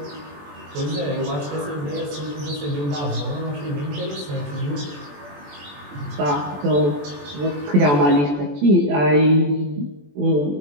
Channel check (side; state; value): left; late; 21 ms